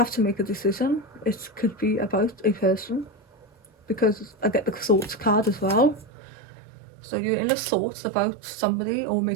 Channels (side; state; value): left; drops out; at 6.1 s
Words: to make a decision. It could be about a person, because I get the thoughts card as well. So you're in the thoughts about somebody, or